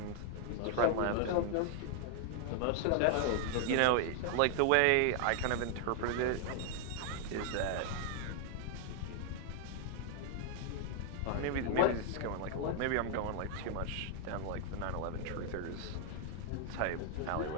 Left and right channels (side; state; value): both; different; correlation 0.00